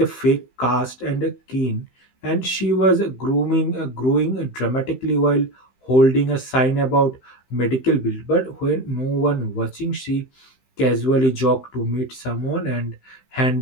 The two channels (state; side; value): late; right; 15 ms